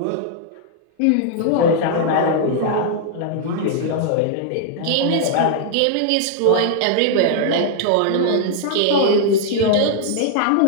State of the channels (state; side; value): different; both; correlation -0.01